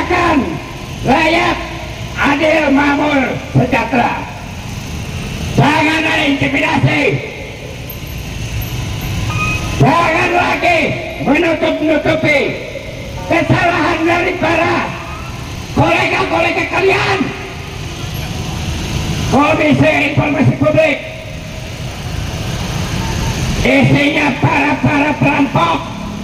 rakyat adil, makmur, sejahtera. Jangan ada intimidasi, jangan lagi menutup-nutupi kesalahan dari para kolega-kolega kalian. Komisi Informasi Publik isinya para perampok,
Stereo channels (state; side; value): identical; both; correlation 1.00